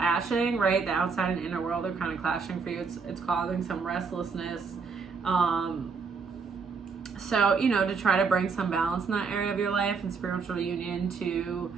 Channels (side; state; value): left; quieter; 5.1 dB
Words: right? The outside and inner world are kind of clashing for you. It's causing some restlessness. So, you know, to try to bring some balance in that area of your life and spiritual union, to,